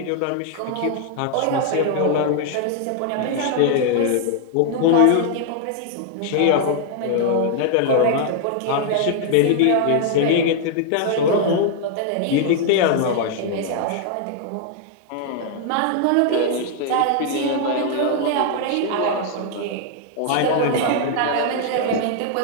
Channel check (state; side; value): different; both; correlation 0.00